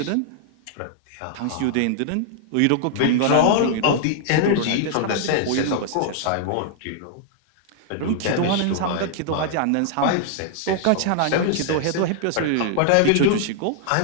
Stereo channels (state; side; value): different; both; correlation -0.01